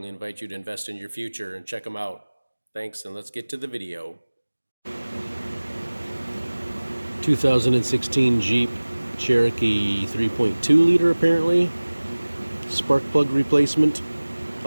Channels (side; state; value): both; inverted; correlation -1.00